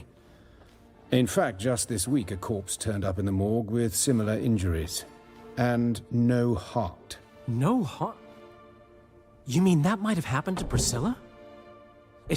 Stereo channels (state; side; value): identical; both; correlation 1.00